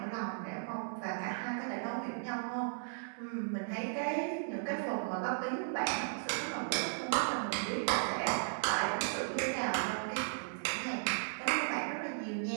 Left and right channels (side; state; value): left; silent; 54 dB below the other